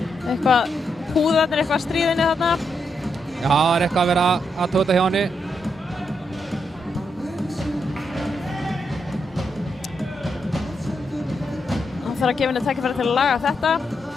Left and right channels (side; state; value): both; normal; correlation 0.81